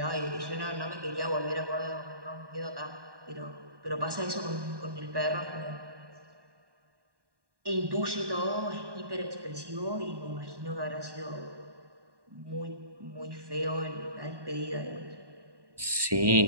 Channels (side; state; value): left; late; 1.1 ms